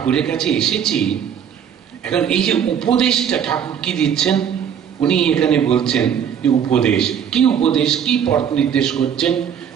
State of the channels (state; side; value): quieter; left; 8.4 dB